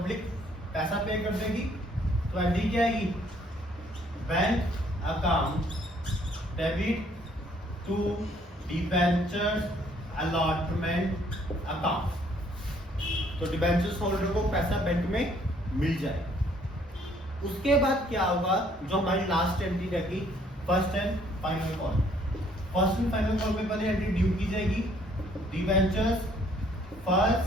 पैसा पे कर देगी। तो एंट्री क्या आएगी, bank account debit to debentures allotment account. तो डिबेंचर्स होल्डर को पैसा बैंक में मिल जाए। उसके बाद क्या होगा, जो हमारी लास्ट एंट्री रहेगी, first and final call. First and final call में पहले एंट्री ड्यू की जाएगी, debentures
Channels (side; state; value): both; normal; correlation 0.63